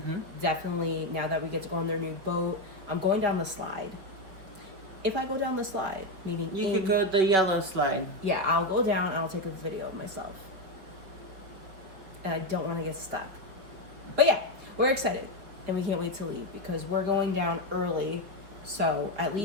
Definitely, now that we get to go on their new boat, I'm going down the slide. If I go down the slide, meaning you could go the yellow slide. Yeah, I'll go down and I'll take a video of myself. And I don't want to get stuck. But yeah, we're excited. And we can't wait to leave because we're going down early. So at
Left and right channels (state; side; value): late; left; 5.3 ms